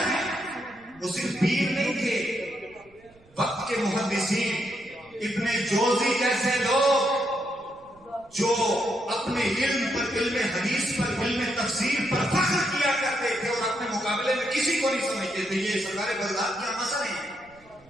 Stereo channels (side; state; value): right; noise; rumble, 29 dB below the sound